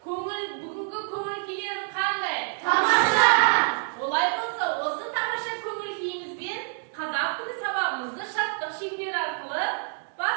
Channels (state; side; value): silent; left; 56 dB below the other